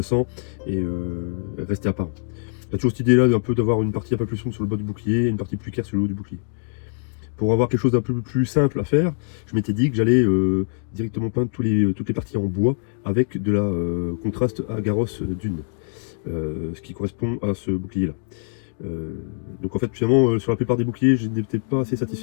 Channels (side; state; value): right; silent; digital silence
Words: et resté apparent. Il y a toujours cette idée là d'avoir une partie un peu plus sombre sur le bas du bouclier et une partie plus claire sur le haut du bouclier. Pour avoir quelque chose d'un peu plus simple à faire, je m'étais dit que j'allais directement peindre toutes les parties en bois avec de la contraste Agaros Dune, ce qui correspond à ce bouclier là. Donc en fait finalement sur la plupart des boucliers je n'étais pas assez